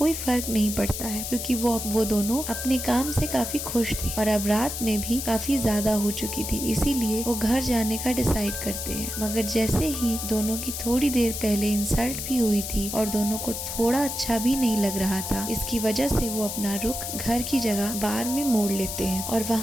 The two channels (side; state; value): left; noise; hiss, 5 dB below the sound